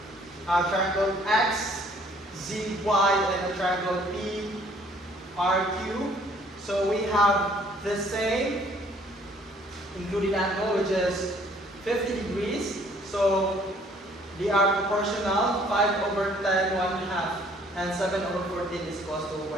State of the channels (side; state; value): both; normal; correlation 0.59